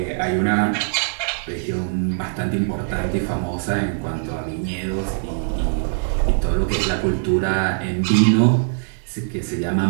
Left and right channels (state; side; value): silent; left; digital silence